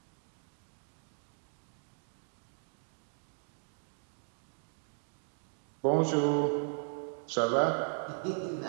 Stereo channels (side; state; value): left; silent; digital silence